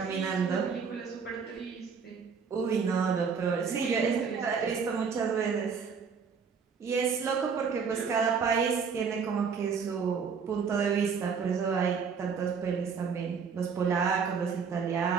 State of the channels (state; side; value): quieter; left; 6.0 dB